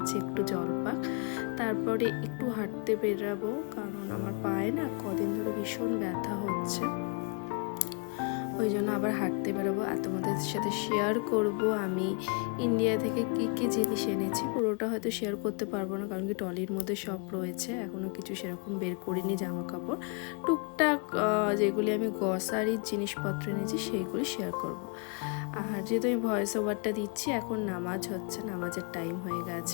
একটু জল পাক, তারপরে একটু হাঁটতে বেরাবো, কারণ আমার পায়ে না কদিন ধরে ভীষণ ব্যথা হচ্ছে, ওই জন্য আবার হাঁটতে বেরোবো। আর তোমাদের সাথে শেয়ার করব আমি ইন্ডিয়া থেকে কি কি জিনিস এনেছি। পুরোটা হয়তো শেয়ার করতে পারবো না, কারণ কি ট্রলির মধ্যে সব রয়েছে, এখনও কিছু সেরকম বের করিনি। জামা কাপড় টুকটাক যেগুলি আমি গ্রসারির জিনিসপত্র এনেছি সেইগুলি শেয়ার করব। আর যেহেতু আমি ভয়েস ওভারটা দিচ্ছি, এখন নামাজ হচ্ছে, নামাজের টাইম হয়ে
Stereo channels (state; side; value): quieter; right; 36.4 dB